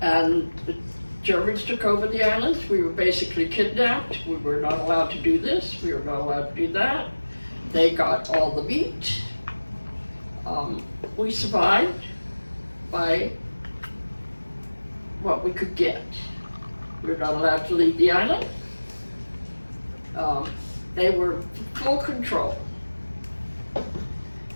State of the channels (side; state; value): both; inverted; correlation -1.00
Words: the Germans took over the islands. We were basically kidnapped. We were not allowed to do this. We were not allowed to do that. They got all the meat. We survived by what we could get. We were not allowed to leave the island. They were full control.